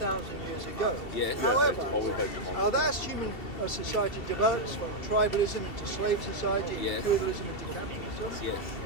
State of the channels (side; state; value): right; late; 2.7 ms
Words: years ago. Yes. However, as human society develops from tribalism into slave society, feudalism into capitalism,